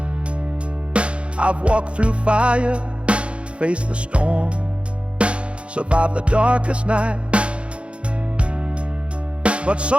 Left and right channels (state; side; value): late; left; 0.059 ms